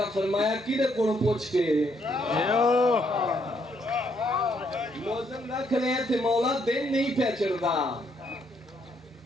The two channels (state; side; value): normal; both; correlation 0.72